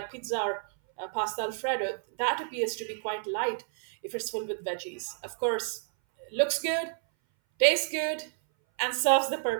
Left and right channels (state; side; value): silent; left; 58 dB below the other